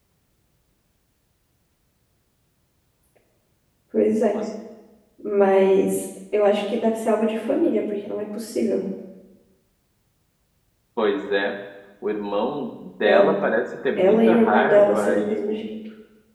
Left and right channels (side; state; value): both; identical; correlation 1.00